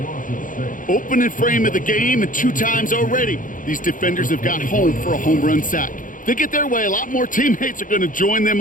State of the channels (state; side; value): late; right; 0.39 ms